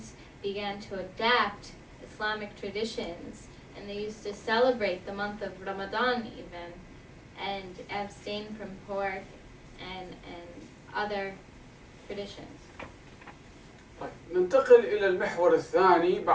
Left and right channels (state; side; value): identical; both; correlation 1.00